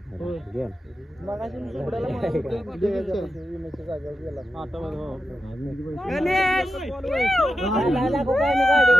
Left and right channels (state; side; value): normal; both; correlation 0.90